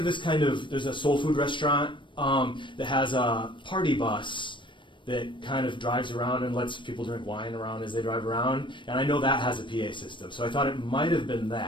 this there's a soul food restaurant that has a party bus that kind of drives around and lets people drink wine around as they drive around, and I know that has a PA system, so I thought it might have been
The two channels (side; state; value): right; late; 0.24 ms